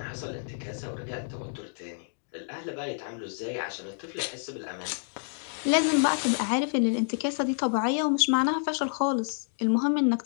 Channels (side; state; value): right; silent; digital silence